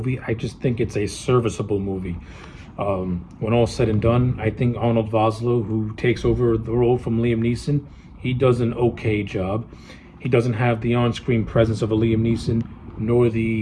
I just think it's a serviceable movie. When all said and done, I think Arnold Vosloo, who takes over the role from Liam Neeson, he does an okay job. He doesn't have the on-screen presence of a Liam Neeson, nor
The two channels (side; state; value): both; identical; correlation 1.00